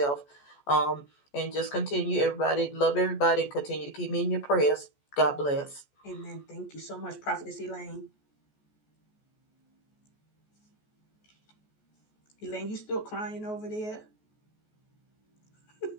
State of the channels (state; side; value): late; right; 14 ms